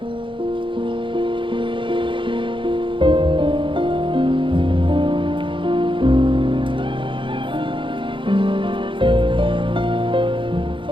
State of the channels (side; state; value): left; late; 0.24 ms